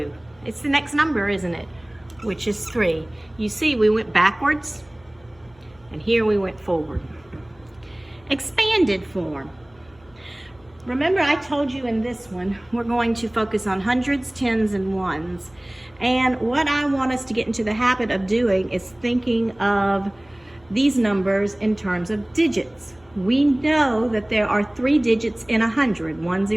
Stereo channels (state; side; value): noise; left; hum, 29 dB below the sound